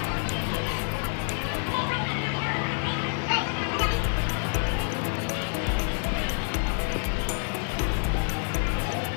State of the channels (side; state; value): right; silent; 55 dB below the other